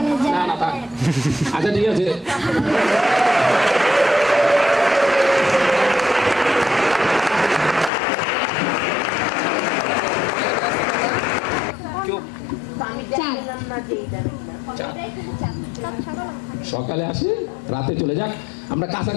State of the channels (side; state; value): right; drops out; at 7.9 s